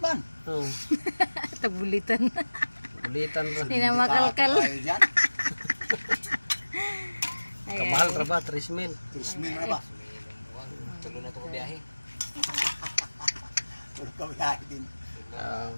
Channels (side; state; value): both; inverted; correlation -1.00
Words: Tagulitan. Bulitan ra. Hindi na makalkal. Kamahal ra ba 3,000? 3,000 na ba? Tulo na to ko biyahe. Tulo ka biyahe din.